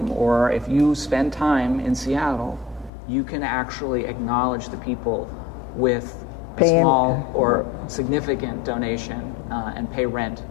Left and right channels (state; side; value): drops out; right; at 2.9 s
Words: or if you spend time in Seattle, you can actually acknowledge the people with a small or significant donation and pay rent